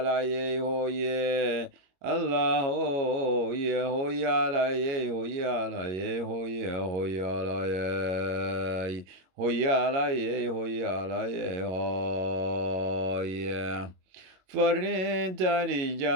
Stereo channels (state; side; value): late; left; 22 ms